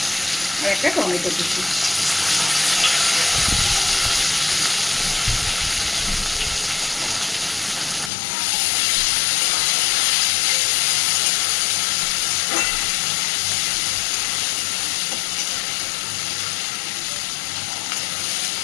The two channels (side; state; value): right; drops out; at 8.1 s